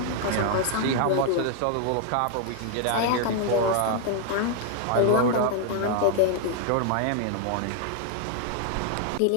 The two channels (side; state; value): both; different; correlation 0.00